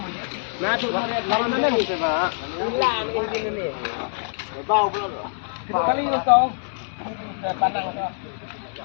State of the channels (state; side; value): silent; right; digital silence